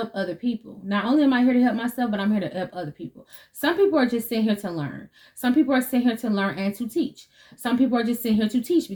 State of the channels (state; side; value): identical; both; correlation 1.00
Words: other people. Not only am I here to help myself, but I'm here to help other people. Some people are just sitting here to learn. Some people are sitting here to learn and to teach. Some people are just sitting here to teach